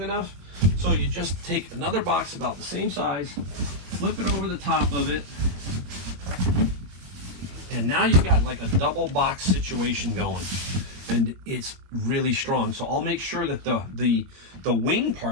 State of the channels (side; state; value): left; late; 22 ms